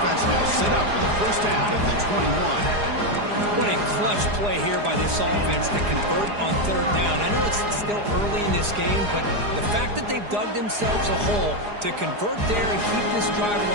now set up for the 1st down at the 21. What a clutch play here by this offense to convert on 3rd down. I know it's still early in this game, but the fact that they've dug themselves a hole to convert there and keep this drive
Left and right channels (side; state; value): left; late; 4.9 ms